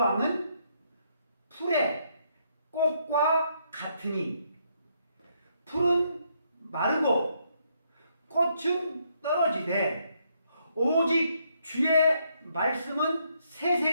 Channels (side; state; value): both; inverted; correlation -0.74